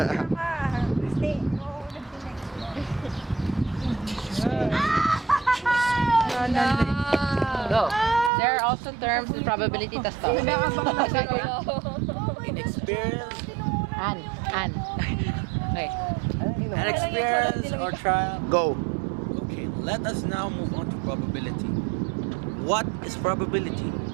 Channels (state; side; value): drops out; left; at 8.3 s